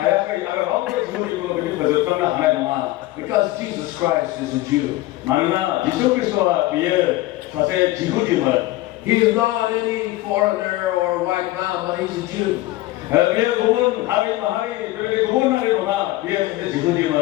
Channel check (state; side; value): quieter; right; 17.5 dB